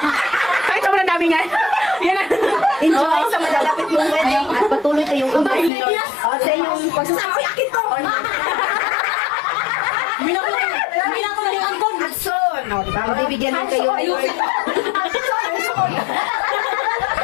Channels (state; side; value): drops out; right; at 5.7 s